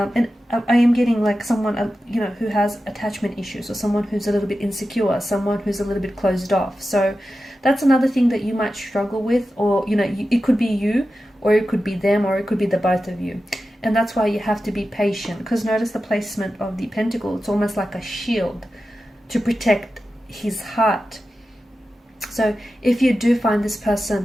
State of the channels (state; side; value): normal; both; correlation 0.92